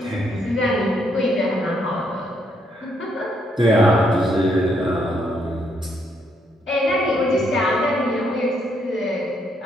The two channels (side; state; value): both; normal; correlation 0.74